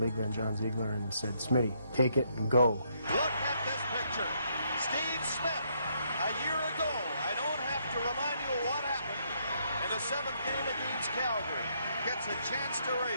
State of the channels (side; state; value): both; inverted; correlation -0.73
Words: the league then, John Ziegler, and said, "Smitty, take it and go." Look at this picture. Steve Smith, a year ago, I don't have to remind you what happened in the seventh game against Calgary. Gets a chance to